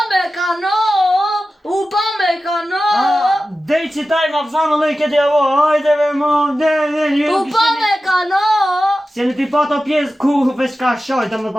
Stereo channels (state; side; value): normal; both; correlation 0.94